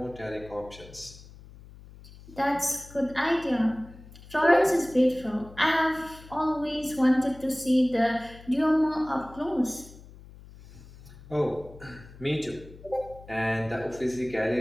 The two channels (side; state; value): left; noise; hum, 19 dB below the sound